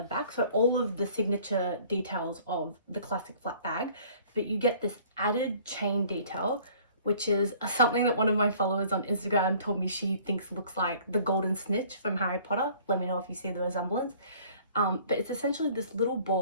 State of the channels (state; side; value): inverted; both; correlation -0.53